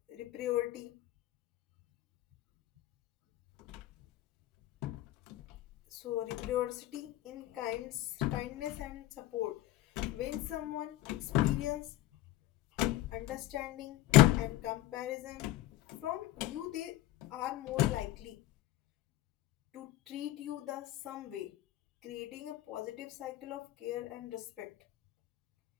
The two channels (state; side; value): quieter; right; 15.2 dB